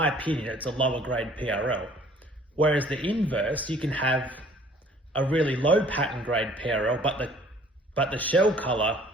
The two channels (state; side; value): normal; both; correlation 0.55